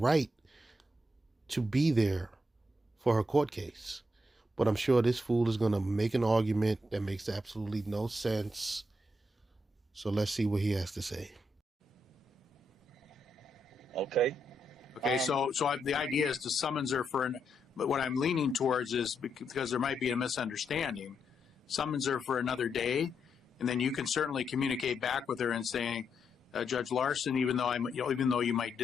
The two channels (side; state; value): both; normal; correlation 0.81